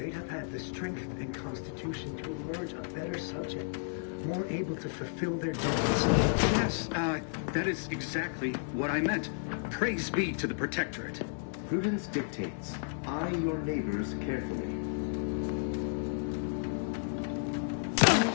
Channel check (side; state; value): right; silent; digital silence